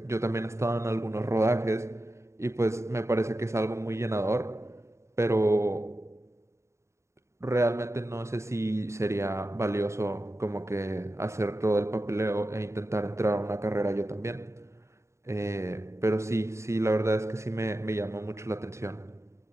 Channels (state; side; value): late; left; 0.14 ms